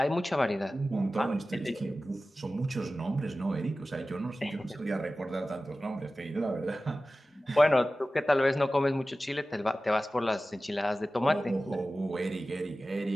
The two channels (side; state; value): both; normal; correlation 0.96